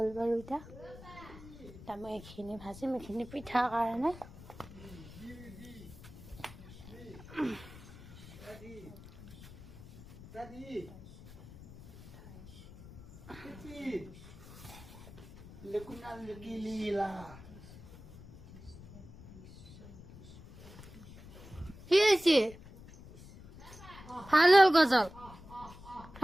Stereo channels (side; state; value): left; noise; rumble, 17 dB below the sound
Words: বাৰু এতিয়া। মই এইখিনি ভাজিম, এইখিনি পিঠাৰ কাৰণে। কি হয়েছে ভালো গজল